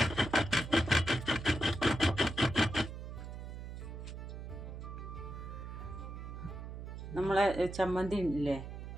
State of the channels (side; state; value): right; noise; hum, 9 dB below the sound